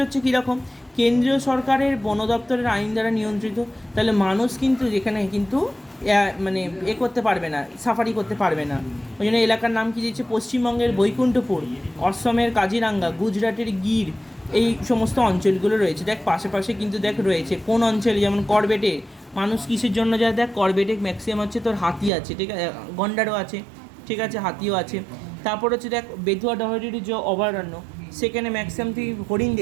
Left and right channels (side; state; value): left; drops out; at 22.1 s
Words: হচ্ছে কীরকম, কেন্দ্রীয় সরকারের বন দপ্তরের আইন দ্বারা নিয়ন্ত্রিত, তাহলে মানুষ কিন্তু যেখানে কিন্তু মানে করতে পারবে না, সাফারি করতে পারবে না। ওই জন্য এলাকার নাম কী দিয়েছে? পশ্চিমবঙ্গের বৈকুণ্ঠপুর, অসমের কাজিরাঙ্গা, গুজরাটের গির, এই সমস্ত অঞ্চলগুলো রয়েছে। দেখ পাশে কিন্তু দেখ রয়েছে কোন অঞ্চলে, যেমন করবেটে মানুষ কিসের জন্য যায়? দেখ করবেটে ম্যাক্সিমাম হচ্ছে তোর হাতি আছে, ঠিক আছে, গন্ডারও আছে, ঠিক আছে, হাতিও আছে। তারপর হচ্ছে দেখ বেতুয়া ডাহরির যে অভয়ারণ্য, সেখানে ম্যাক্সিমাম তুই হরিণ